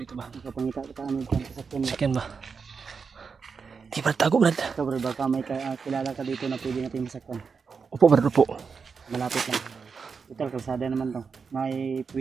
dito ba? Magkapangita kita ano dyan sa sakyan mo. Sakyan ba? Di ba tago, Brad? Ito, Brad, baka may kilala ka dito na pwede natin masakyan. Upo, Brad, upo. Malapit lang. Ito, kalsada naman to. May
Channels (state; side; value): quieter; left; 5.5 dB